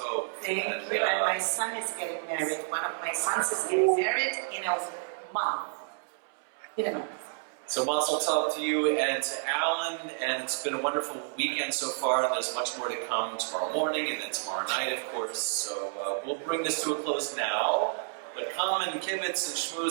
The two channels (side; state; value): left; silent; 58 dB below the other